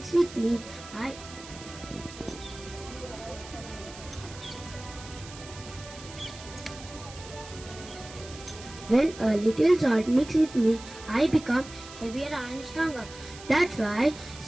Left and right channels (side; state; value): right; noise; hiss, 16 dB below the sound